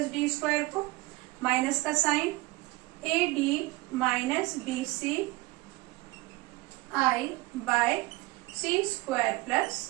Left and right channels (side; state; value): left; quieter; 21.4 dB